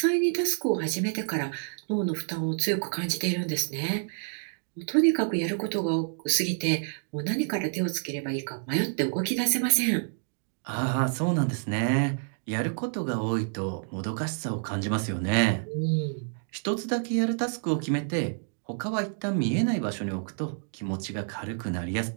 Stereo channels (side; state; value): left; silent; 59 dB below the other